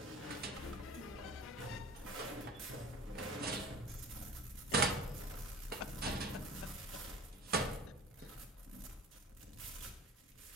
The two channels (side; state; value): both; normal; correlation 0.40